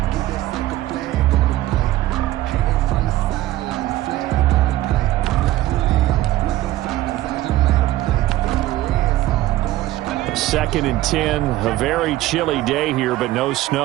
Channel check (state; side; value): quieter; left; 15.3 dB